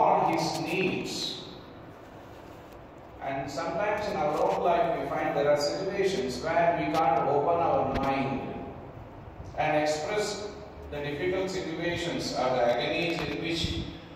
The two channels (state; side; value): identical; both; correlation 1.00